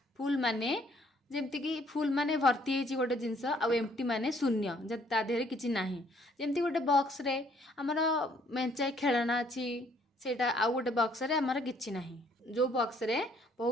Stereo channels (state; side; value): normal; both; correlation 0.64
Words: फुल माने जेमती कि फुल माने भर्ती होची गोटे जिनस आ एम्प्टी माने शून्य जे ता देहरे किछि नाही. जेमती गोटे बॉक्स रे हमर मेंचाई खेलना अछि सेटा आ गोटे बॉक्स रे हमर किछि नाही. जो बॉक्स रे